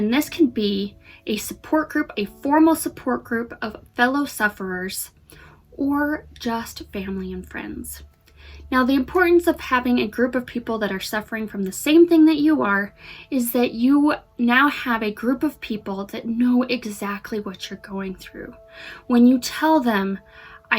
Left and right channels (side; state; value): both; identical; correlation 1.00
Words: this can be a support group, a formal support group of fellow sufferers, or just family and friends. Now, the importance of having a group of people that are suffering from the same thing that you are is that you now have a group of people that know exactly what you're going through. When you tell them,